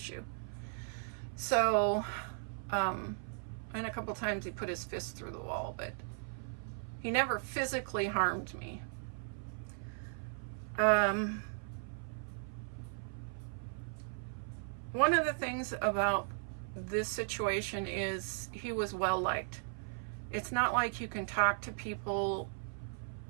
So, and a couple times he put his fist through the wall, but he never physically harmed me. One of the things about this situation is he was well liked. It's not like you can talk to people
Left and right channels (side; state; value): left; silent; 53 dB below the other